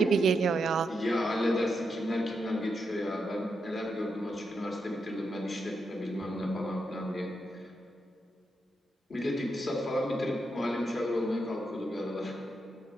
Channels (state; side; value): normal; both; correlation 0.84